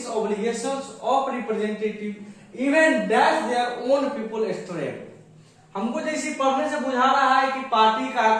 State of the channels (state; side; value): identical; both; correlation 1.00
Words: obligations of representative even dash their own people stray। हमको जैसे पढ़ने से बुझा रहा है कि party का